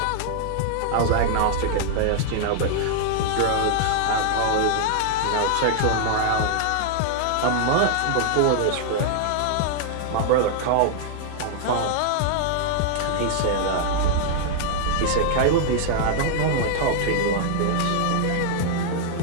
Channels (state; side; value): different; both; correlation -0.01